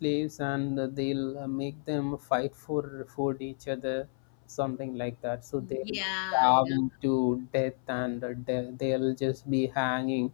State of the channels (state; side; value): silent; right; 56 dB below the other